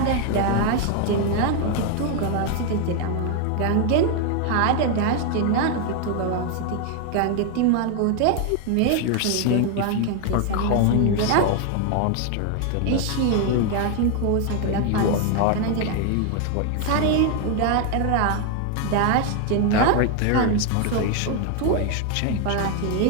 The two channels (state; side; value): different; both; correlation 0.01